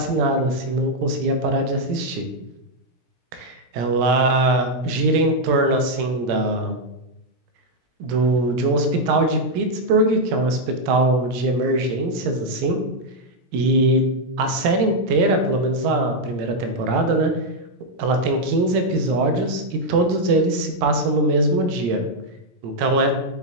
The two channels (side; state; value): left; late; 17 ms